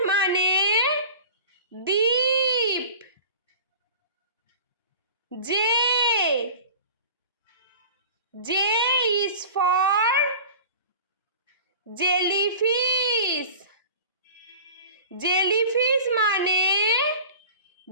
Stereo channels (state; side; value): inverted; both; correlation -0.39